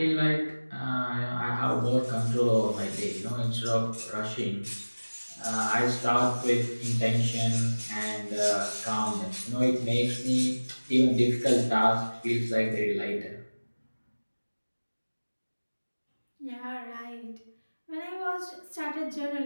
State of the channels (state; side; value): inverted; both; correlation -1.00